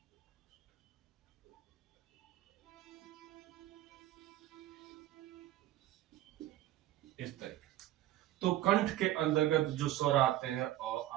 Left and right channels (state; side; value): quieter; left; 14.1 dB